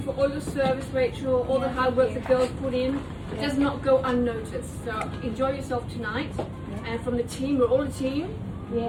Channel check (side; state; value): both; identical; correlation 1.00